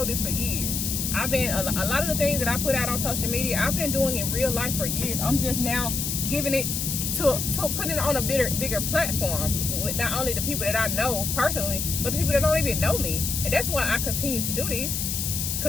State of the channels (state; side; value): noise; left; hiss, 2 dB below the sound